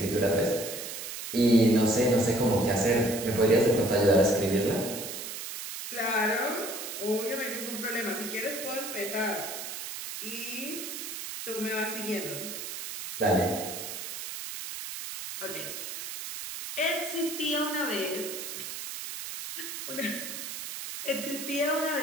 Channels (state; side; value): noise; right; hiss, 7 dB below the sound